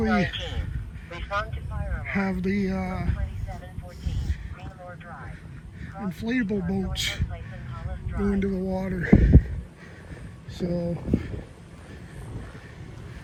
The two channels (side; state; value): both; identical; correlation 1.00